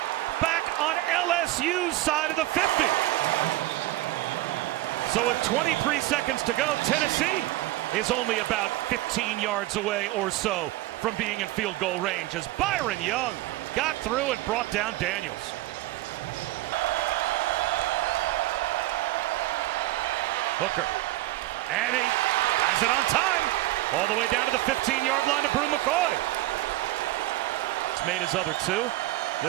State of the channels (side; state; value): left; quieter; 17.2 dB